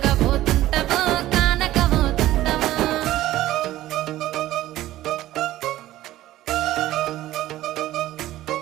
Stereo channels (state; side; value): quieter; left; 15.0 dB